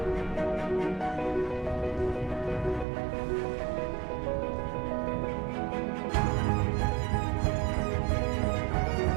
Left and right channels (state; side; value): drops out; left; at 2.9 s